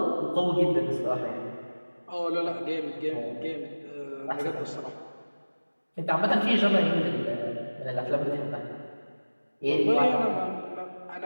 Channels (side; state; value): both; inverted; correlation -1.00